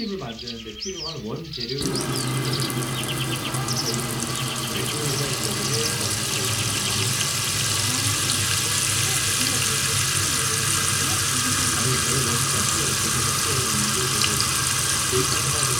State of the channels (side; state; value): both; identical; correlation 1.00